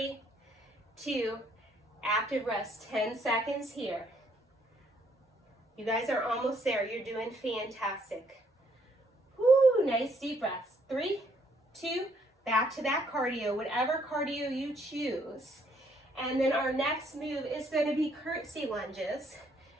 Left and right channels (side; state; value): both; normal; correlation 0.68